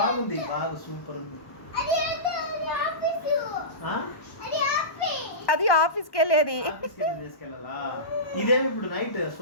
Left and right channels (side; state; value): right; late; 1.2 ms